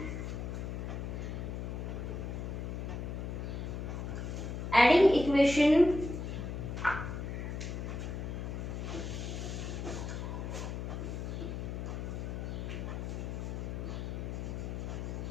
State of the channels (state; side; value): noise; left; hum, 4 dB below the sound